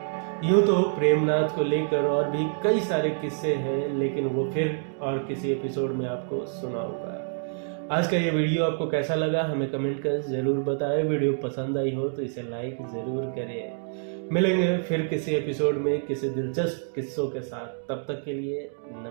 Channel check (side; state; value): left; silent; digital silence